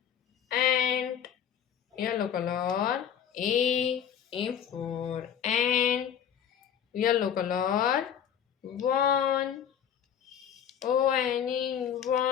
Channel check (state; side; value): quieter; right; 8.8 dB